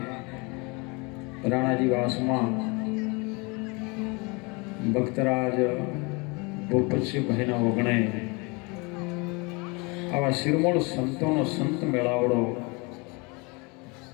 રાણાજી વાસમાં ભક્તરાજ ભૂપતસિંહભાઈના વગણે આવા શિરમોળ સંતોનો સંત મેળાવડો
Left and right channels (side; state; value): right; quieter; 28.7 dB